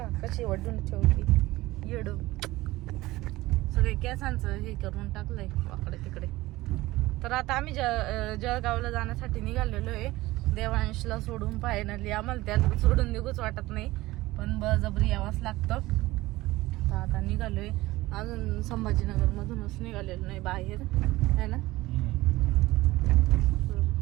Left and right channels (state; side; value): quieter; left; 18.6 dB